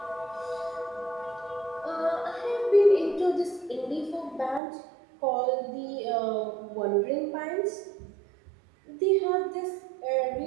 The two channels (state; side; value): drops out; left; at 4.6 s